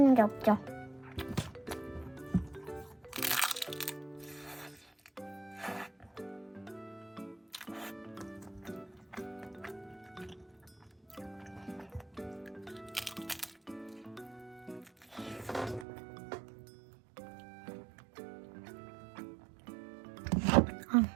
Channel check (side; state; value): left; drops out; at 15.9 s